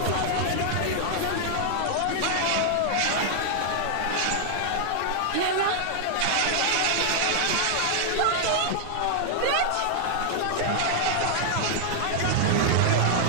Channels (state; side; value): different; both; correlation 0.00